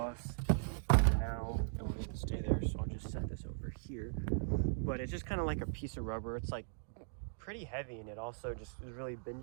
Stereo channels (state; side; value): silent; left; digital silence